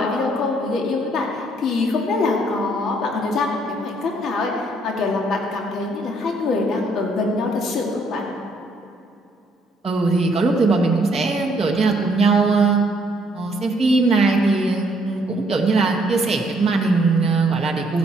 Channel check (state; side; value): normal; both; correlation 0.68